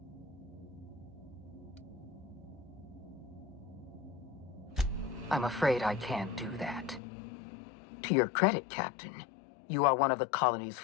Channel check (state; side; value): drops out; right; at 7.0 s